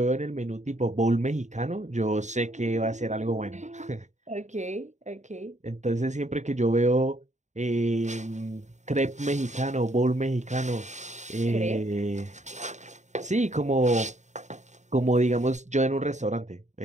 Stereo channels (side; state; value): left; late; 0.34 ms